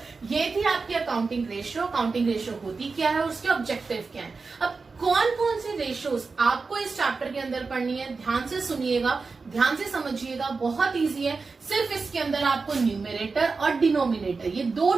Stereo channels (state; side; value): quieter; left; 4.4 dB